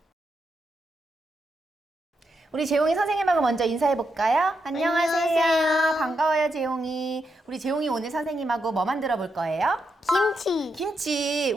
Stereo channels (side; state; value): both; normal; correlation 0.83